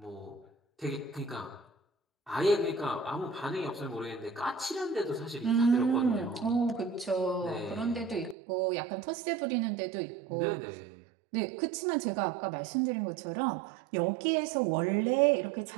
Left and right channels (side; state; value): left; drops out; at 8.3 s